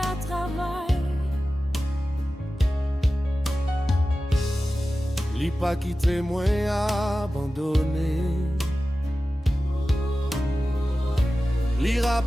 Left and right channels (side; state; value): both; normal; correlation 0.95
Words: à travail. Li pas quitté moi abandonné. Li